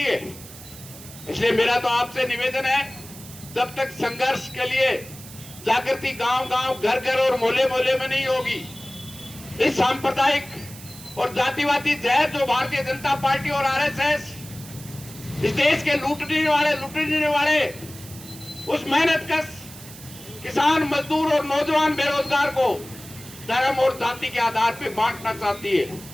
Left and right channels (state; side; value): noise; right; hiss, 16 dB below the sound